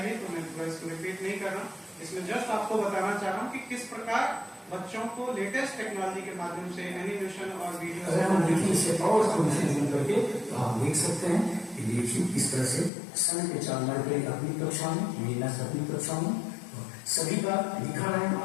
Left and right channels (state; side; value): drops out; right; at 12.9 s